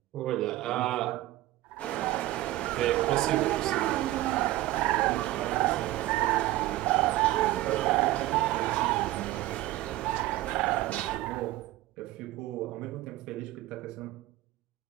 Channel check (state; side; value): quieter; left; 16.3 dB